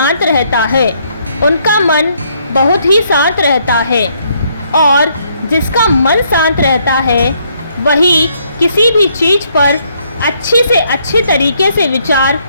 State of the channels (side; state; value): both; inverted; correlation -0.70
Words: रहता है, उनका मन बहुत ही शांत रहता है। और जिसका मन शांत रहता है वही किसी भी चीज़ पर अच्छी से अच्छे तरीके से विचार